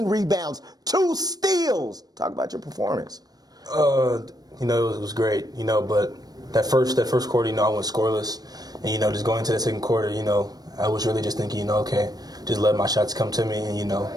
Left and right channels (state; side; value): late; left; 0.19 ms